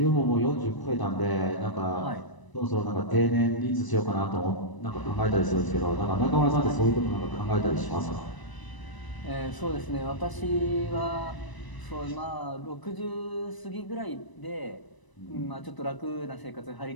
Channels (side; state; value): right; late; 1.0 ms